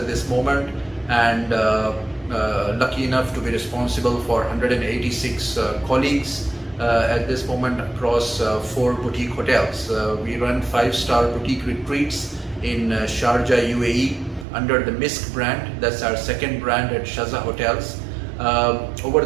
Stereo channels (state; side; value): drops out; left; at 14.5 s